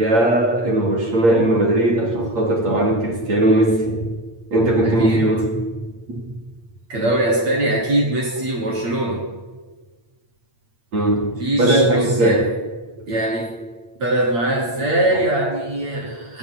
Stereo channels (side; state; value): left; late; 8.7 ms